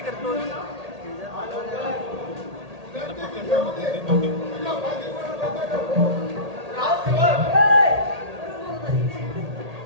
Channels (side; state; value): left; late; 1.8 ms